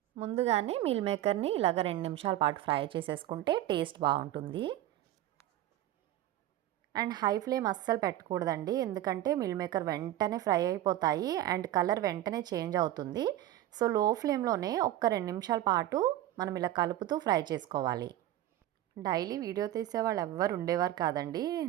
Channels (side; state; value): left; quieter; 13.5 dB